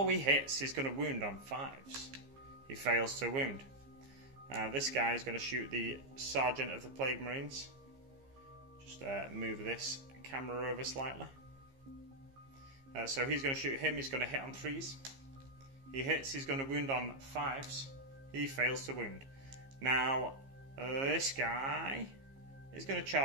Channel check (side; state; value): left; late; 15 ms